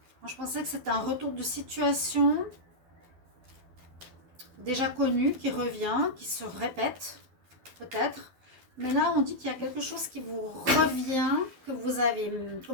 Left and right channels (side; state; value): left; late; 12 ms